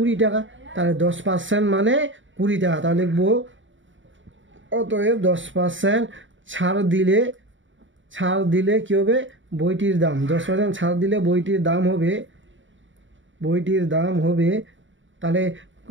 টাকা। তাহলে 10% মানে 20 টাকা। তাহলে লিখবো অতএব 10% ছাড় দিলে কী হবে? বইটির দাম 10% ছাড় দিলে বইটির দাম হবে তাহলে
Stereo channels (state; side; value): late; left; 0.55 ms